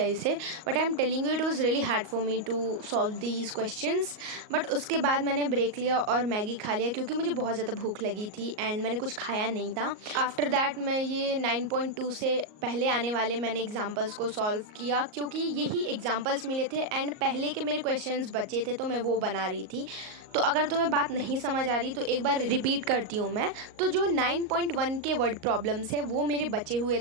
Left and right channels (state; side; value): late; left; 38 ms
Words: इसे, but I am telling you it was really hard for me to solve these questions. But उसके बाद मैंने ब्रेक लिया और मैगी खा लिया क्योंकि मुझे बहुत ज़्यादा भूख लगी थी एंड मैंने कुछ खाया नहीं था। आफ्टर दैट मैं ये 9.2 से पहले आने वाले मैंने एग्जाम्पल्स को सॉल्व किया क्योंकि यही एग्जाम्पल्स मिले थे एंड पहले के मेरे क्वेश्चंस बचे थे तो मैं वो बना रही थी। तो अगर तुम्हें बात नहीं समझ आ रही तो एक बार रिपीट करती हूँ मैं। तो जो 9.1 के वर्ड प्रॉब्लम्स है वो मेरे बचे हुए